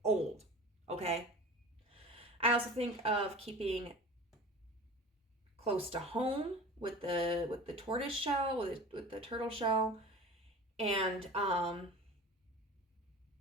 old. Okay. I also think of keeping close to home with the tortoise shell, with the turtle shell, and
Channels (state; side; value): normal; both; correlation 0.38